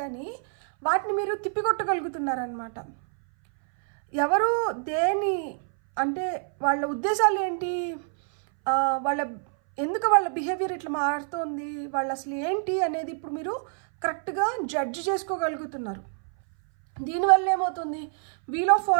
కానీ వాటిని మీరు తిప్పికొట్టగలుగుతున్నారనమాట. ఎవరు దేని అంటే వాళ్ళ ఉద్దేశాలు ఏంటి, ఎందుకు వాళ్ళ బిహేవియర్ ఇట్లా మారుతోంది, వాళ్ళు అసలు ఏంటి అనేది ఇప్పుడు మీరు కరెక్ట్గా జడ్జ్ చేసుకోగలుగుతున్నారు. దీనివల్ల ఏమవుతుంది, వీల్ ఆఫ్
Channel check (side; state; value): left; silent; 60 dB below the other